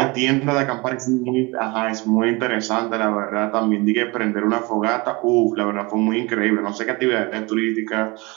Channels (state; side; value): quieter; left; 25.5 dB